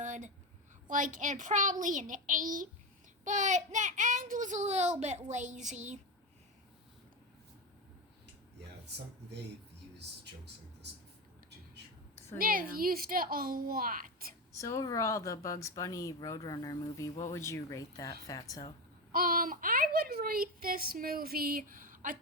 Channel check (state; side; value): normal; both; correlation 0.17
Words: Like, and probably an 8. But the end was a little bit lazy. Yeah, they've used jokes like this before, to be sure. So, They've used it a lot. So overall, the Bugs Bunny Roadrunner movie, what would you rate that, Fatso? I would rate this movie a